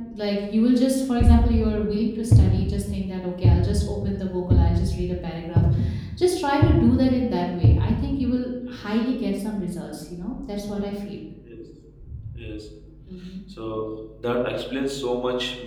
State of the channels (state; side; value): identical; both; correlation 1.00